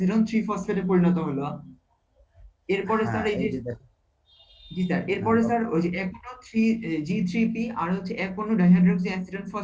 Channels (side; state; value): both; identical; correlation 1.00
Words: 3 ফসফেটে পরিণত হলো। এরপরে স্যার হ্যাঁ, এই এই যে যে দেখো। জি স্যার হ্যাঁ এরপরে বলো। স্যার ওই যে এক অণু G3P আর হচ্ছে এক অণু ডাইহাইড্রক্সি অ্যাসিডন